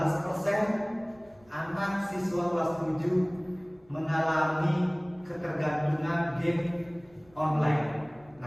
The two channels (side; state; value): left; noise; rumble, 30 dB below the sound